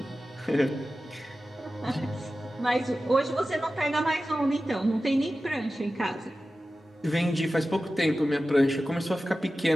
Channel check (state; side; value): normal; both; correlation 0.94